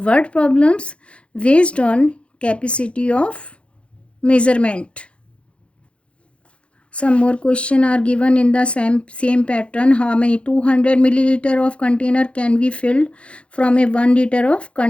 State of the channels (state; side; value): late; right; 0.060 ms